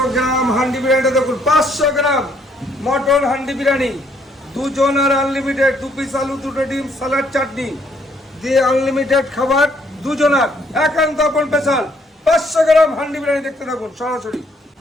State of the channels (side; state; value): both; normal; correlation 0.68